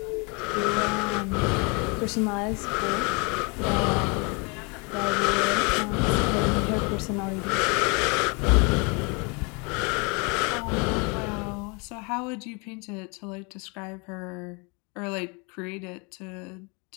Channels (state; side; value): quieter; right; 31.7 dB